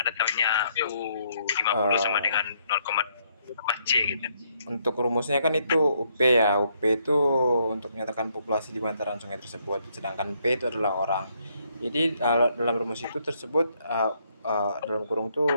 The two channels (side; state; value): both; inverted; correlation -0.72